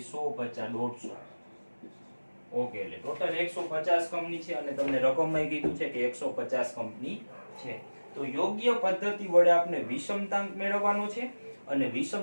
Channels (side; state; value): both; inverted; correlation -1.00